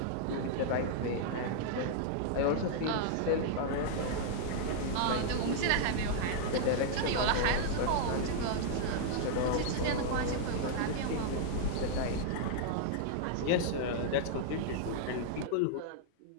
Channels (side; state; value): both; different; correlation -0.01